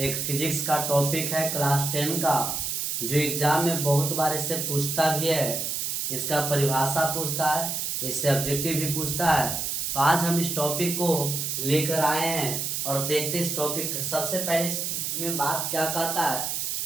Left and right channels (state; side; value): noise; right; hiss, 1 dB below the sound